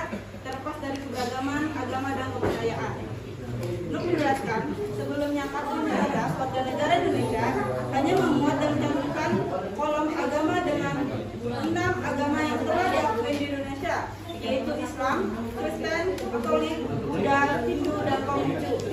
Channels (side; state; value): both; identical; correlation 1.00